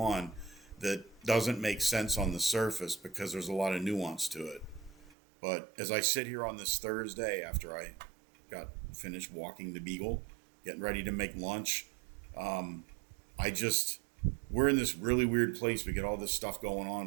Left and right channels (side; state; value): left; drops out; at 5.2 s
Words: that doesn't make sense on the surface because there's a lot of nuance to it. But as I sit here on this Thursday after I got finished walking the Beagle, getting ready to make lunch, we're in this really weird place. We got all this stuff going